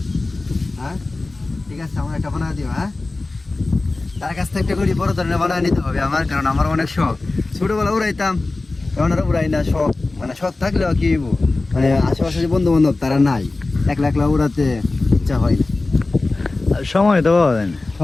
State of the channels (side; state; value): right; quieter; 3.3 dB